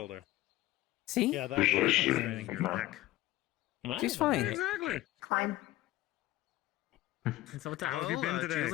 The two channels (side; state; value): right; quieter; 16.6 dB